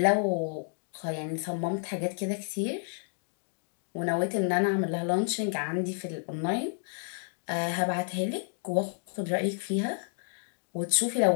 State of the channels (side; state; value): right; silent; 57 dB below the other